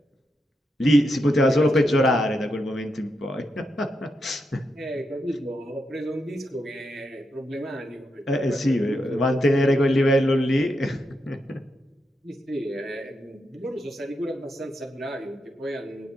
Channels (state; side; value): normal; both; correlation 0.84